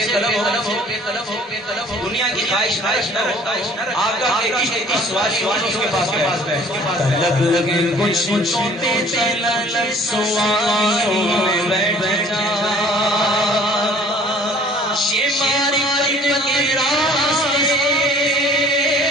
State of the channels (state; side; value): normal; both; correlation 0.52